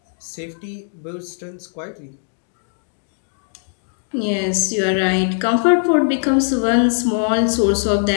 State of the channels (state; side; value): silent; right; digital silence